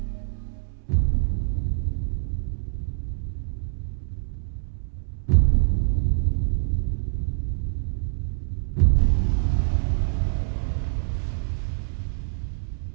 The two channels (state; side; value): silent; left; digital silence